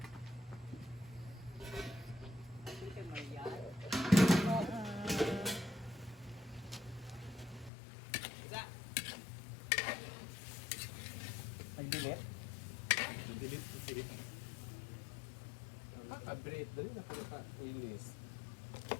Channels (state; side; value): drops out; right; at 7.7 s